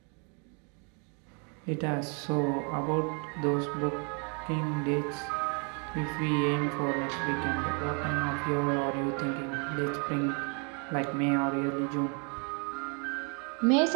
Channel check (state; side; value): quieter; left; 36.1 dB